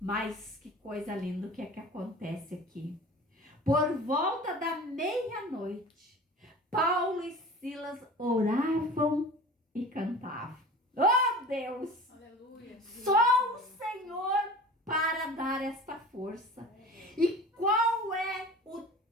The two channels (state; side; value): normal; both; correlation 0.40